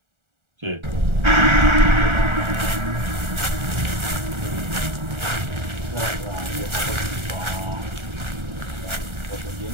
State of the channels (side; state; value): left; late; 1.4 ms